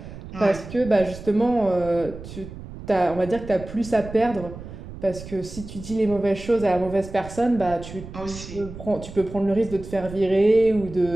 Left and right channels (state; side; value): noise; right; rumble, 13 dB below the sound